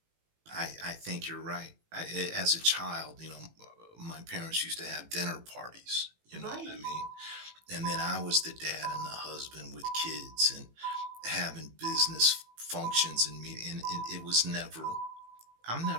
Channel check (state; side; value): late; left; 18 ms